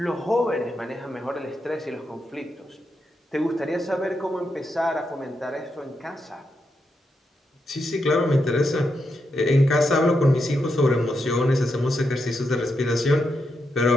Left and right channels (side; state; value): both; normal; correlation 0.84